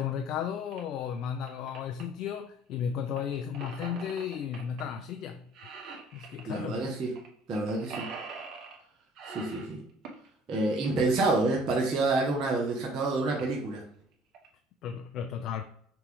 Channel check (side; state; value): both; normal; correlation 0.53